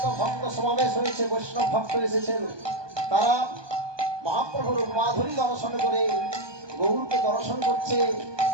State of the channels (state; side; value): late; left; 1.2 ms